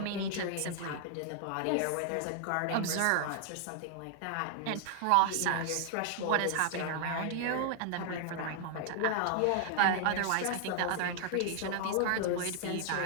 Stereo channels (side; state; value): both; different; correlation 0.00